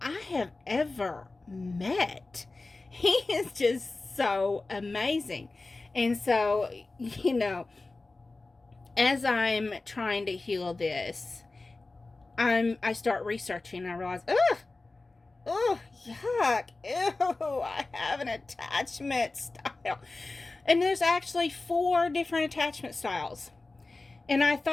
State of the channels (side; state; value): right; quieter; 3.3 dB